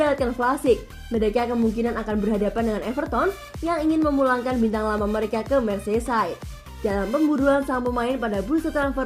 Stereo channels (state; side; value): identical; both; correlation 1.00